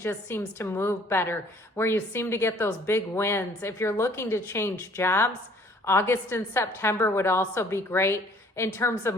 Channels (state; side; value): normal; both; correlation 0.57